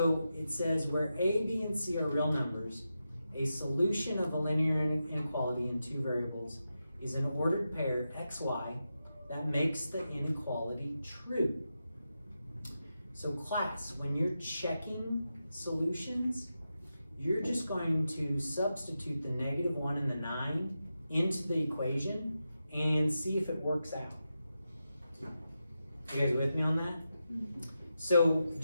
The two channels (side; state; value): both; inverted; correlation -0.89